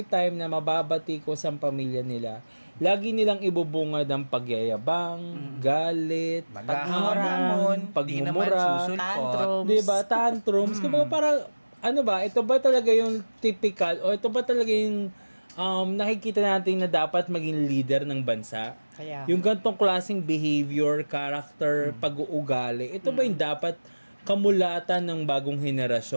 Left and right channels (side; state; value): both; inverted; correlation -1.00